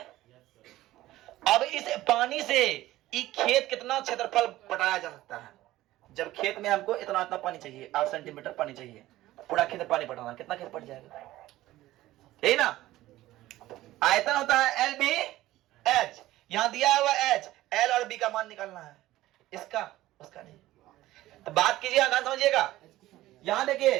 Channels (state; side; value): quieter; left; 16.0 dB